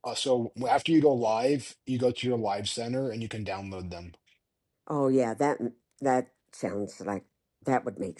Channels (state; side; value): identical; both; correlation 1.00